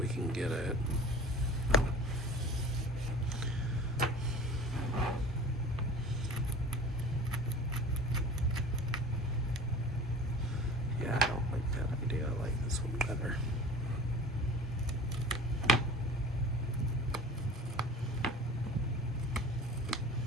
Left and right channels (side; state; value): both; normal; correlation 0.41